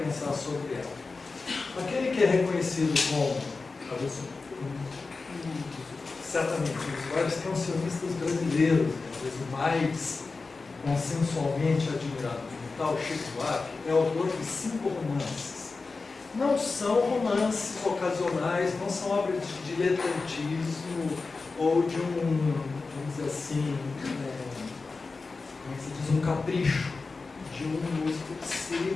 sobre ela. Aquele que é reconhecido como, talvez, certamente, os vários cancionistas brasileiros, talvez o mais consensualmente admirado como tal, Chico Buarque, é autor de 5 romances. Não são romances ocasionais, não são obras de diletantismo ou de vamos dizer assim, como se diz, um capricho de um músico que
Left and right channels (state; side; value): quieter; right; 4.0 dB